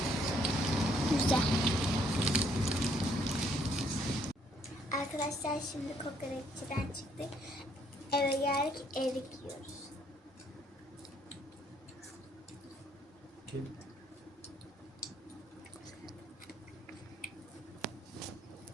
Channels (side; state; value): both; normal; correlation 0.67